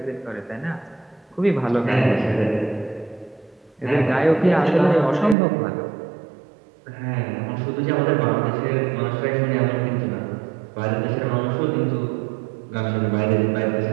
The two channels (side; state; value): left; drops out; at 5.4 s